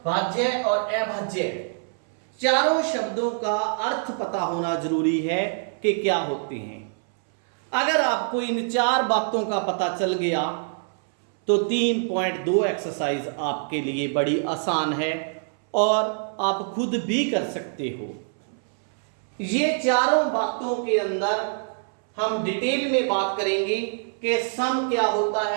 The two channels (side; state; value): left; silent; 62 dB below the other